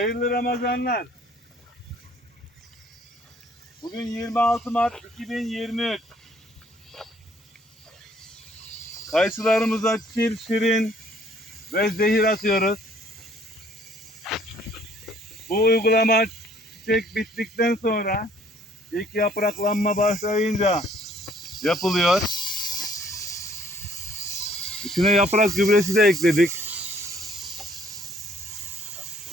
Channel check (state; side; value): normal; both; correlation 0.61